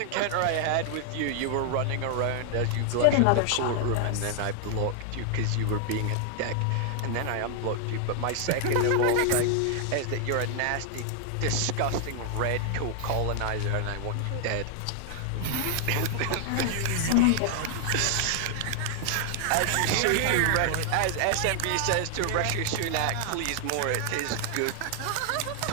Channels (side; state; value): both; different; correlation 0.00